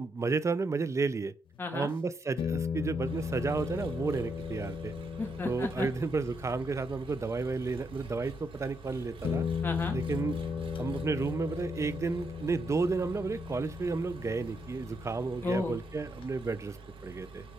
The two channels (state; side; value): normal; both; correlation 0.79